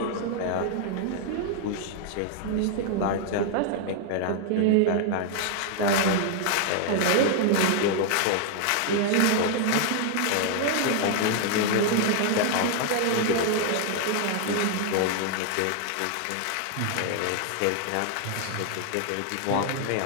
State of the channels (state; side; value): different; both; correlation 0.00